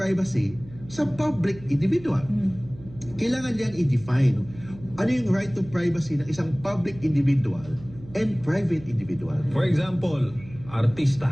sa public individual. Kailangan yan i-define. Ano yung right to privacy ng isang public individual and private individual? For example,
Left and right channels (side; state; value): right; noise; hum, 18 dB below the sound